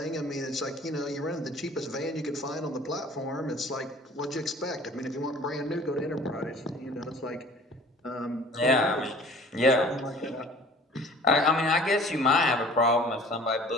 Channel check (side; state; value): both; normal; correlation 0.48